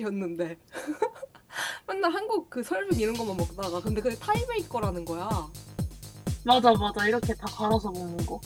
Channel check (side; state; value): both; identical; correlation 1.00